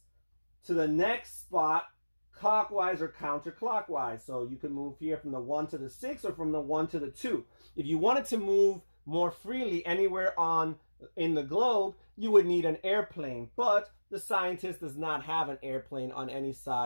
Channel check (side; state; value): both; inverted; correlation -1.00